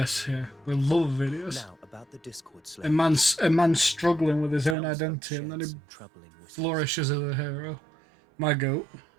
here. We love Vidius. Now about the Discord A slave. man's struggling with his own Sounds like identity, and then he shares some troubling whispers. flourishes as a hero. My goat.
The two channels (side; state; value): left; drops out; at 4.8 s